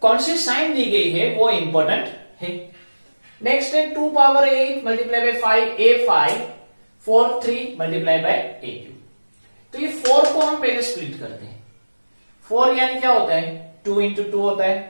कौन सी साइन दी गई है वो इंपॉर्टेंट है। नेक्स्ट है 2 power 8 multiply by 5 a5 4 3 multiply by a3। तो ये 4 को हम पहले स्प्लिट करते हैं। 4 यानी क्या होता है 2 इंटू 2 होता है,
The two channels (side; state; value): both; inverted; correlation -1.00